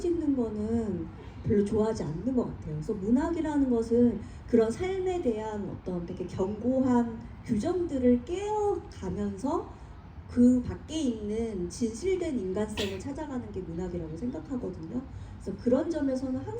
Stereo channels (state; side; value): identical; both; correlation 1.00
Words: 거는 별로 좋아하지 않는 것 같아요. 그래서 문학이라는 것은 그런 삶에 대한 어떤 되게 견고한 규정들을 깨어가면서 그 밖에 있는 진실된 인간성을 찾아가는 게 문학이라고 생각하거든요. 그래서 그런 점에서는